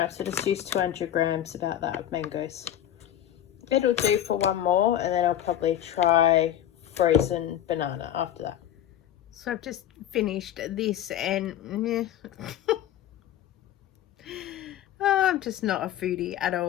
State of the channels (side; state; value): right; quieter; 11.2 dB